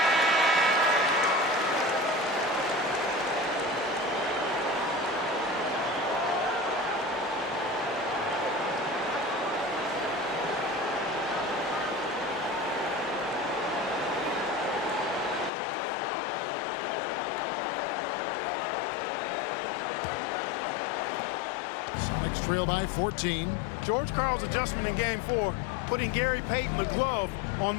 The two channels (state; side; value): drops out; right; at 15.5 s